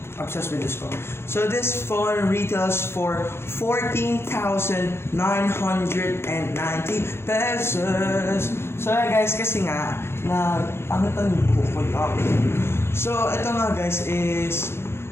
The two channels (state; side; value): late; right; 0.12 ms